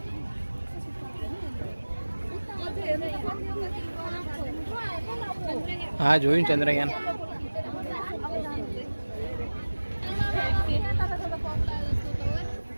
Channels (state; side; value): inverted; both; correlation -1.00